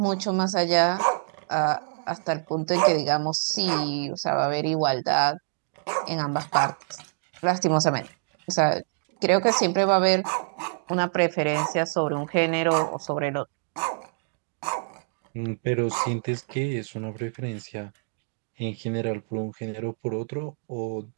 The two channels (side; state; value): left; silent; digital silence